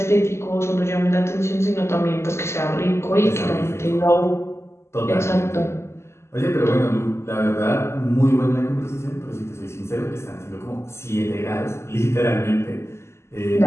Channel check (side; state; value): right; late; 0.13 ms